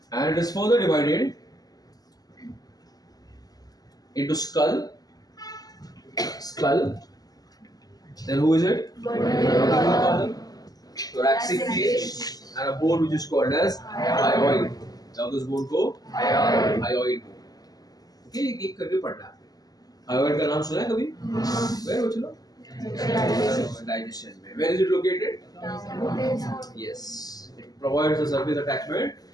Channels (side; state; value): right; late; 0.18 ms